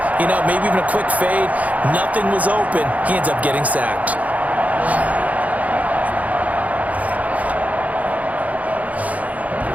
maybe even a quick fade. Nothing was open. He ends up getting sacked.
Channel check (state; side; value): late; left; 0.072 ms